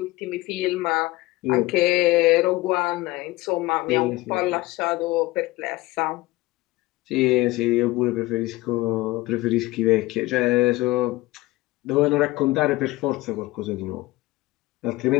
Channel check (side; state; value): right; quieter; 19.7 dB